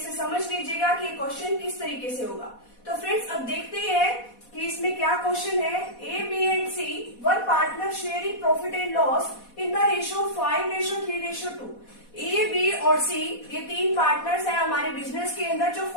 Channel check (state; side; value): late; right; 4.1 ms